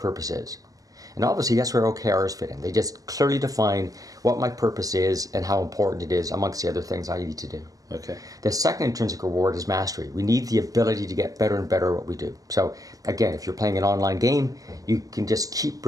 is. And obviously that's where OKRs fit in. They just clearly define what my purpose is and how important it is amongst the other things I need to do. Okay. The second intrinsic reward is mastery. We need the ability to get better and better at what we do. So again, if you're playing an online game, you can just keep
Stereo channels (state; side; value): late; left; 0.17 ms